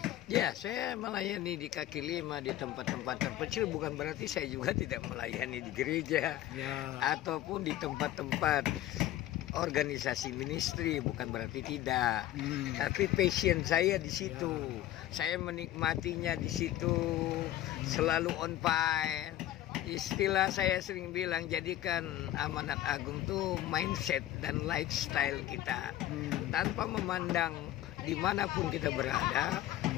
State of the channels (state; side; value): quieter; right; 13.9 dB